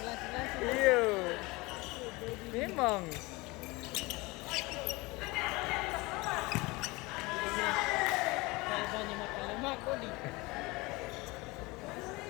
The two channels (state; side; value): quieter; right; 23.5 dB